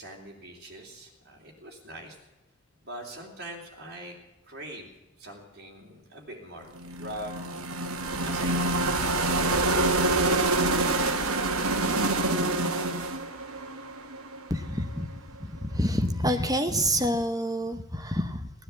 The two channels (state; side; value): normal; both; correlation 0.14